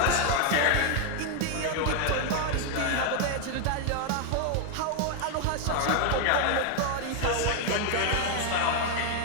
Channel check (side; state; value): both; different; correlation 0.00